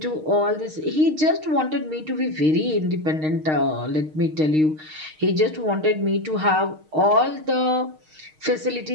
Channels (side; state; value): left; late; 6.5 ms